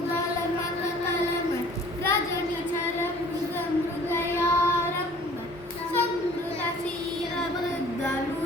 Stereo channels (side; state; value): both; normal; correlation 0.51